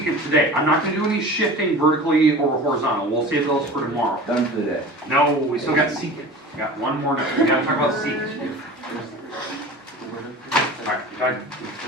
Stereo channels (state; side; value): normal; both; correlation 0.37